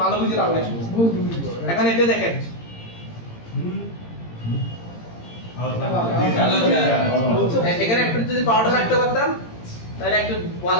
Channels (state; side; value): late; right; 18 ms